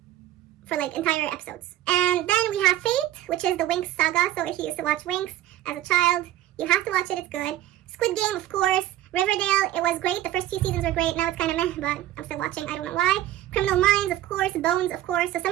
For like entire episodes. And then we have Fate, which is the Winx saga, so if you used to watch Winx as a child, you have to watch it, it's good. Squid Game, of course. Riverdale, it was great, the first few seasons were great, now it's kind of meh, but I'm still watching, I don't know why. Criminal Minds, of course, Bones, of course, so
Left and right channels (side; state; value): left; quieter; 13.5 dB